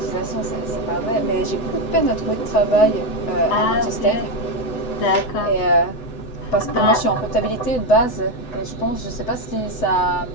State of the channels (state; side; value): late; right; 7.9 ms